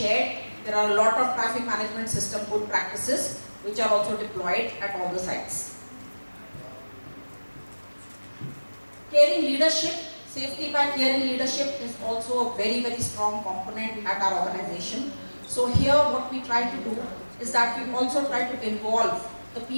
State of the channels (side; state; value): both; inverted; correlation -1.00